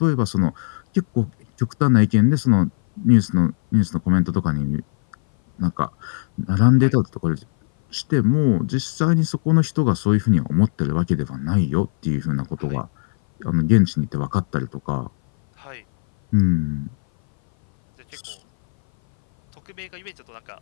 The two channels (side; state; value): right; silent; 59 dB below the other